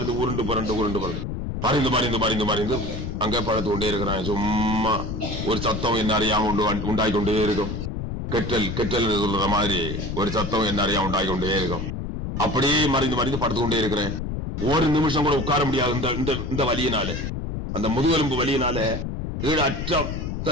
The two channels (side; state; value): left; noise; rumble, 4 dB below the sound